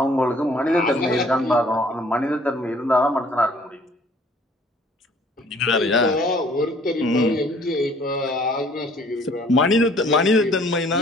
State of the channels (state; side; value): normal; both; correlation 0.56